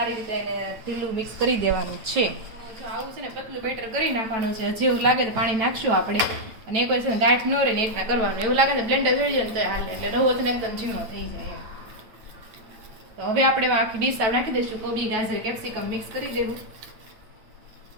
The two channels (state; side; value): late; left; 9.0 ms